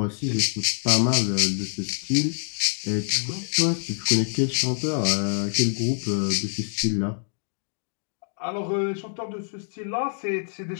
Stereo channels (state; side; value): silent; right; digital silence